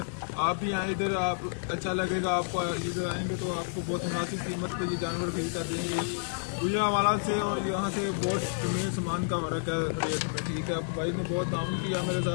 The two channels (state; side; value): silent; right; 58 dB below the other